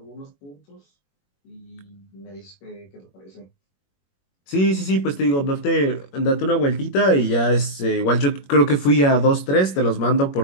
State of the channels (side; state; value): right; late; 21 ms